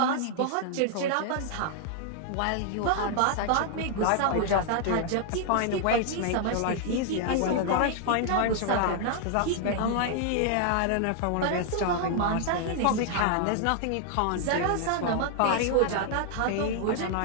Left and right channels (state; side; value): different; both; correlation 0.00